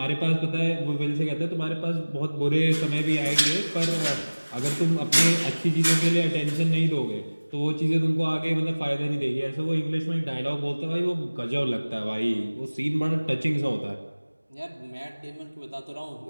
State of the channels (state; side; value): inverted; both; correlation -1.00